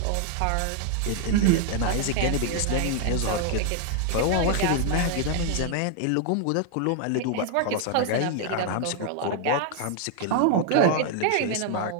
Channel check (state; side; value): different; both; correlation 0.00